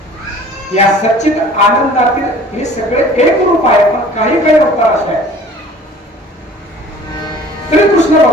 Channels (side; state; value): both; normal; correlation 0.48